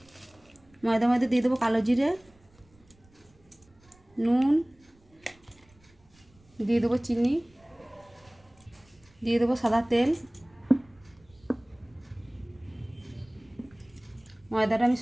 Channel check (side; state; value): right; noise; rumble, 30 dB below the sound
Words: ময়দার মধ্যে দিয়ে দেবো কালো জিরে, নুন, দিয়ে দেবো চিনি, দিয়ে দেবো সাদা তেল। ময়দাটা আমি